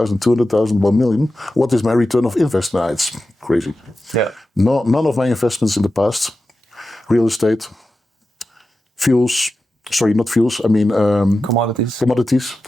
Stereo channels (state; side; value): normal; both; correlation 0.92